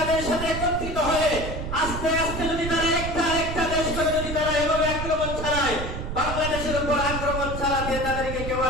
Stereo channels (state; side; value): noise; right; rumble, 5 dB below the sound